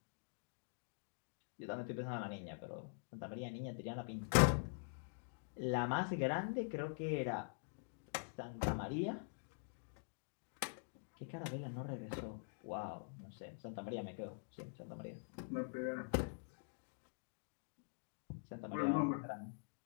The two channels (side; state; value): right; silent; digital silence